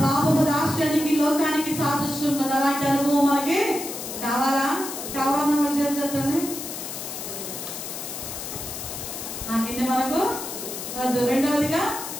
పాపపు దాస్యానికి, లోకానికి సాదృశ్యం ఉన్నది. అలాంటి అనుభవం మనకి కావాలా? కావాలన్న చేద్దాన్ని ఆ గిన్నె మనకు వద్దు. రెండవదిగా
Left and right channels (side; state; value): left; noise; hiss, 7 dB below the sound